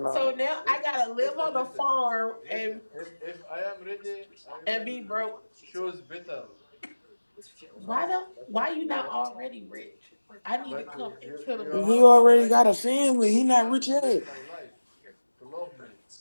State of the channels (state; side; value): inverted; both; correlation -1.00